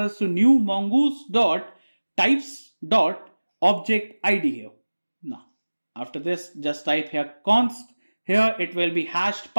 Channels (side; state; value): both; inverted; correlation -1.00